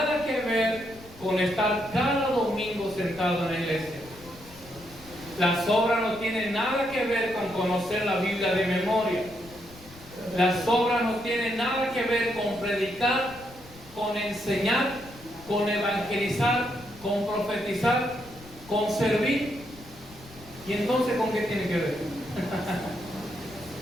que ver con estar cada domingo sentado en la iglesia. Las obras no tienen nada que ver con conocer la Biblia de memoria. Las obras no tienen nada que ver con predicar, con enseñar, con evangelizar, con profetizar, con servir. ¿Y entonces con qué tiene que ver?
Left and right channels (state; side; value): noise; left; rumble, 21 dB below the sound